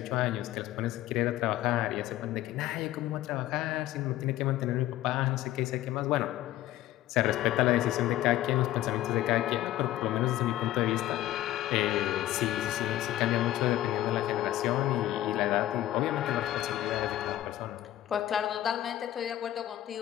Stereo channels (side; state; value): right; quieter; 14.2 dB